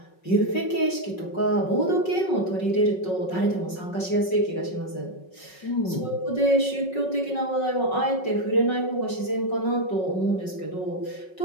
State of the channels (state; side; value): late; right; 5.4 ms